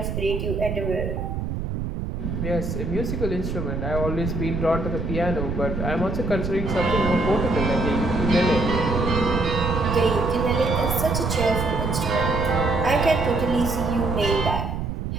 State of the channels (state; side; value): noise; right; rumble, 3 dB below the sound